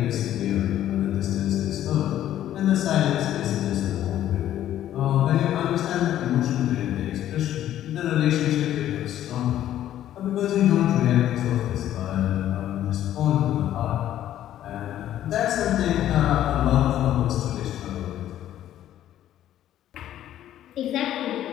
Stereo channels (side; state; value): right; quieter; 12.1 dB